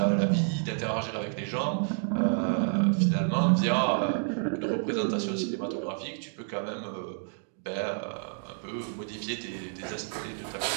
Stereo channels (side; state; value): left; silent; 58 dB below the other